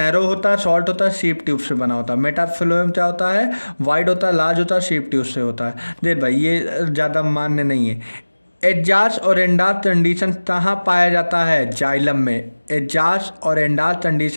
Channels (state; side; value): inverted; both; correlation -1.00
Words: होता है, शॉर्ट होता है, शीप ट्यूब से बना होता है। मेटाफ्लोएम क्या होता है? वाइड होता है, लार्ज होता है, शीप ट्यूब से होता है। देख भाई ये ज़्यादा मान्य नहीं है। एजाज और एंडाज कंडीशन कहाँ पाया जाता है? जाइलम में। एजाज और एंडाज